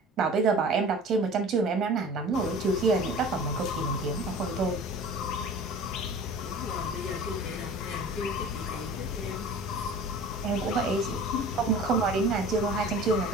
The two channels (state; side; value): normal; both; correlation 0.42